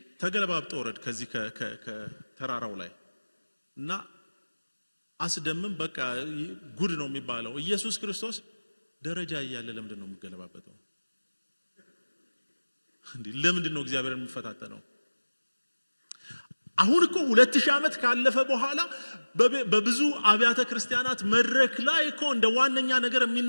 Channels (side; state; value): both; inverted; correlation -1.00